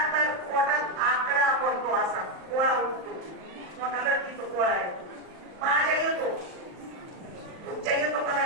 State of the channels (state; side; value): late; left; 38 ms